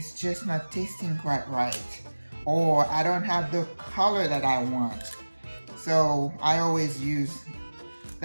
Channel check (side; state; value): both; inverted; correlation -1.00